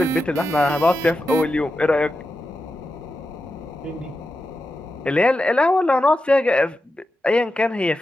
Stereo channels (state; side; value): normal; both; correlation 0.90